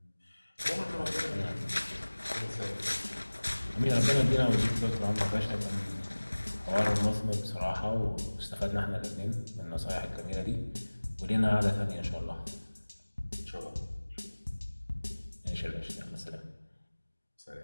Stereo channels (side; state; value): both; inverted; correlation -1.00